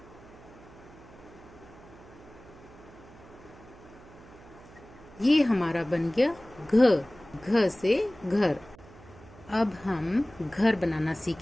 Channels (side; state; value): right; noise; hum, 21 dB below the sound